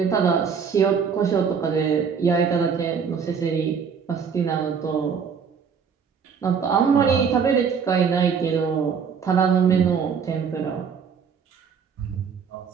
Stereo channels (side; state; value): left; quieter; 6.5 dB